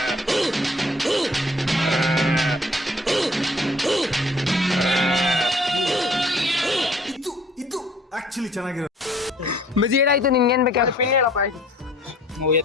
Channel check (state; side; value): normal; both; correlation 0.55